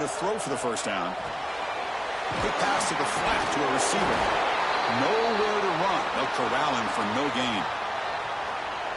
to throw for the first down. Quick pass to the flat to a receiver. Nowhere to run. They'll corral him for no gain.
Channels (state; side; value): identical; both; correlation 1.00